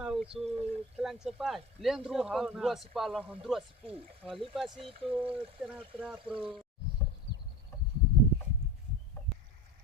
usu kelang sepai. Lendru handrua sipala handrua sipu. Lipas itu tena pro.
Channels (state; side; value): normal; both; correlation 0.31